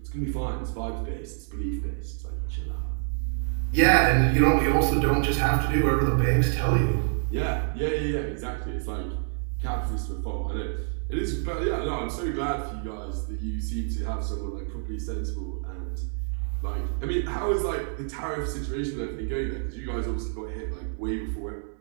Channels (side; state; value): left; silent; digital silence